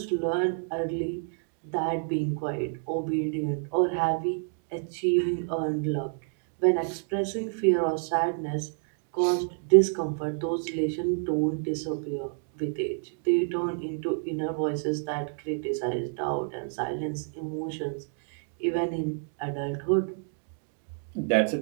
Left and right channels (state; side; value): silent; left; 59 dB below the other